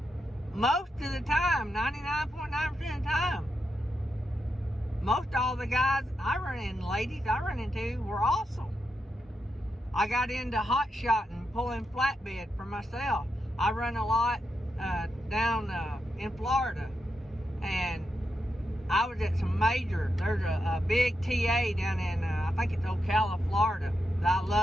most of the time, 99.9% of the time, most all the guys I run into, ladies I run into, were awesome. I got into hot shotting, pulling flatbed for myself. I run a lot down in Florida, and I was at some there's a big TA down in, I think it's Ocala, Florida, that I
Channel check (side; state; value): both; normal; correlation 0.86